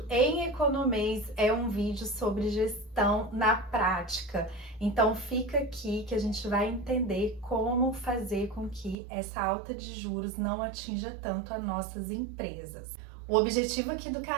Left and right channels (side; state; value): left; drops out; at 9.0 s